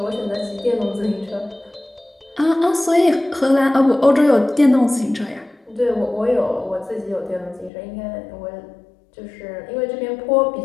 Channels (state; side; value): drops out; right; at 7.7 s